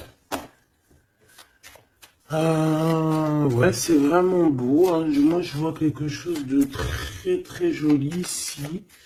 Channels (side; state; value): both; identical; correlation 1.00